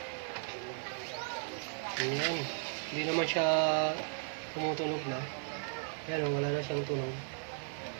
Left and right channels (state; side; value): silent; left; 54 dB below the other